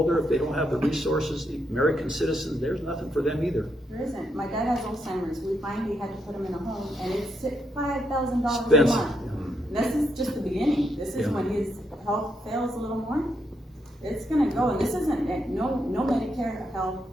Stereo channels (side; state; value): both; normal; correlation 0.78